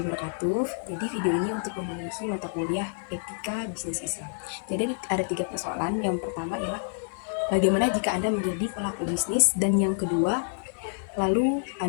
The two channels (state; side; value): silent; right; 59 dB below the other